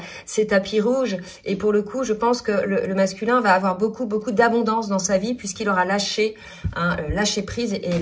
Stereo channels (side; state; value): both; identical; correlation 1.00